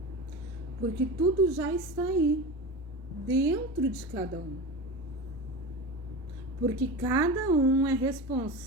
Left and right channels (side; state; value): both; normal; correlation 0.27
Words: Porque tudo já está aí, dentro de cada um. Porque cada um é